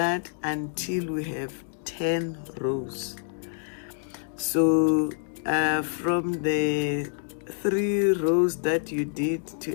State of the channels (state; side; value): silent; right; digital silence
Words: until we have 10 rows. So from the 3 rows that you did